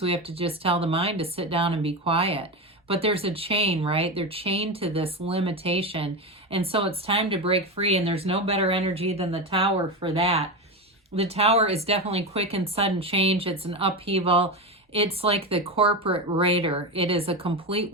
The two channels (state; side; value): normal; both; correlation 0.18